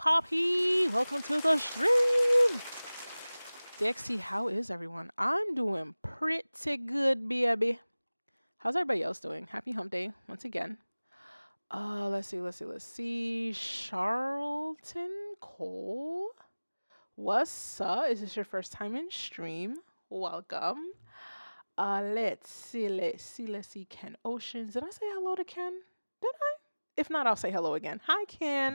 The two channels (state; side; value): inverted; both; correlation -1.00